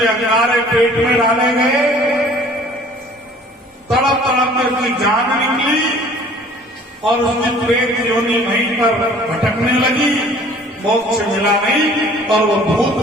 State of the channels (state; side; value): normal; both; correlation 0.52